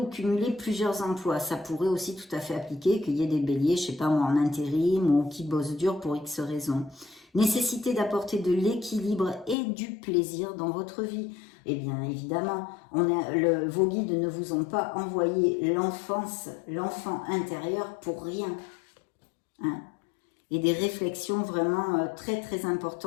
cumuler plusieurs emplois, ça pourrait aussi tout à fait appliquer qu'il y ait des béliers, je sais pas moi, en intérim ou qui bossent dur pour X raisons. Nécessité d'apporter de l'équilibre et du plaisir dans votre vie. Eh bien évidemment, vos guides ne vous ont pas envoyé l'enfant intérieur pour rien. Hein. Et des réflexions vraiment très très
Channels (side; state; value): right; drops out; at 9.6 s